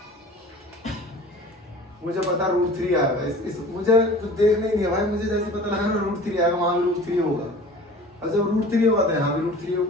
मुझे पता √3 आएगा। इस मुझे कुछ देखना ही नहीं है भाई, मुझे जैसे पता लगा ना √3 आएगा, वहां भी √3 होगा और जब √3 होगा तो यहाँ भी √3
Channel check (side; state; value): both; normal; correlation 0.42